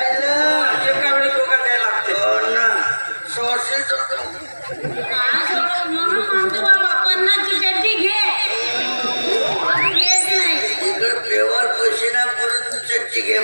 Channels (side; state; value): both; inverted; correlation -1.00